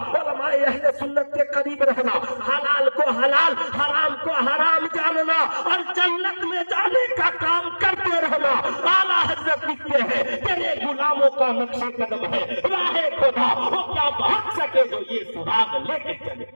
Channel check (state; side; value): inverted; both; correlation -1.00